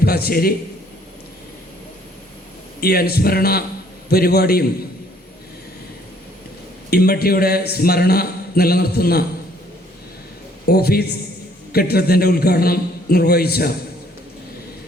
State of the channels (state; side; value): normal; both; correlation 0.62